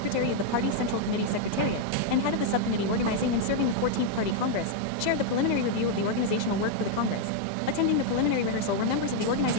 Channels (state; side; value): different; both; correlation 0.00